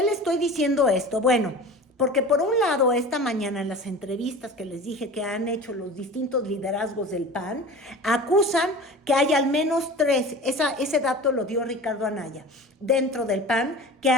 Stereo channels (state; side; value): normal; both; correlation 0.37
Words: le estoy diciendo esto? Bueno, porque por un lado, esta mañana en las entrevistas que les dije que han hecho los distintos liderazgos del PAN, acusan que hay al menos 3, ese dato lo dio Ricardo Anaya, dentro del PAN, que